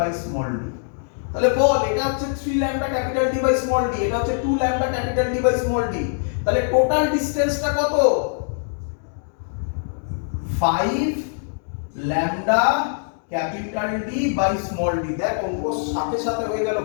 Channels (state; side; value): silent; right; digital silence